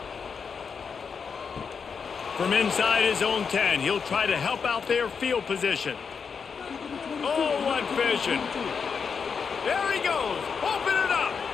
From inside his own 10, he'll try to help out their field position. Oh, what vision. There he goes. Open it up.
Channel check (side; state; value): right; quieter; 6.0 dB